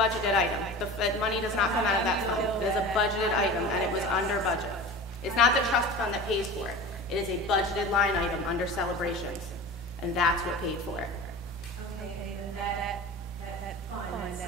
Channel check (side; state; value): both; normal; correlation 0.34